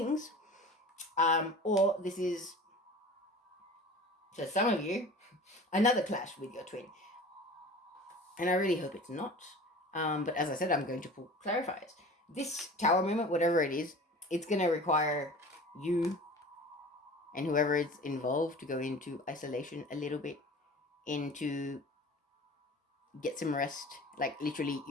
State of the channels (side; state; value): both; normal; correlation 0.39